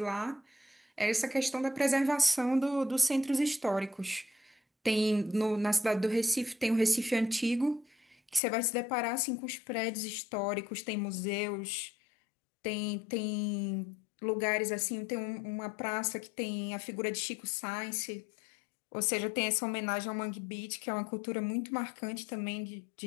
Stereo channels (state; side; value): drops out; right; at 8.4 s